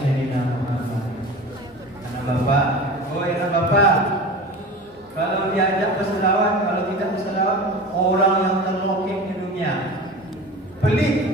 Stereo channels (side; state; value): both; normal; correlation 0.34